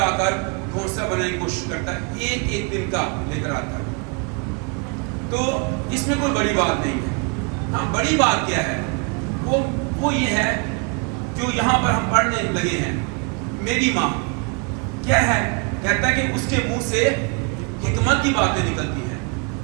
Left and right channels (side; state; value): left; quieter; 34.0 dB